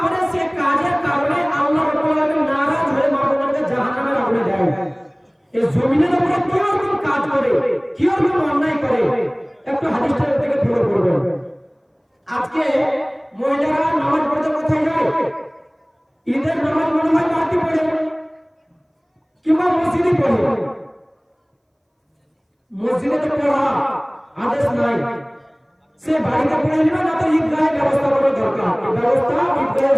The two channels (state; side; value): identical; both; correlation 1.00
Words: করে, সে কাজের কারণে আল্লাহ রাব্বুল আলামিন নারাজ হয়ে মা বোনদেরকে জাহান্নামের আগুনে দেয়। এই জমিনের উপরে কি রকম কাজ করে, কি রকম অন্যায় করে, একটু হাদিসটা থেকে ফলো করবেন। আজকে মহিলারা নামাজ পড়তে কোথায় যায়? ঈদের নামাজ মনে হয় বাড়তি পড়ে কিংবা মসজিদে পড়ে। মসজিদে তো পড়া আদেশ নাই, সে বাড়িতে পড়ে নেবে না তো ঈদগাহের ব্যবস্থা করা দরকার। এই ব্যবস্থা ঈদগাহে